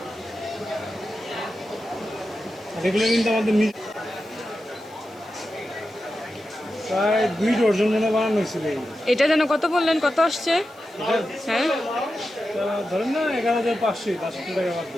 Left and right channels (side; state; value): left; noise; hiss, 29 dB below the sound